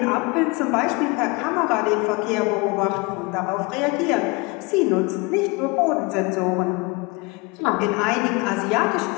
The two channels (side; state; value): right; quieter; 26.4 dB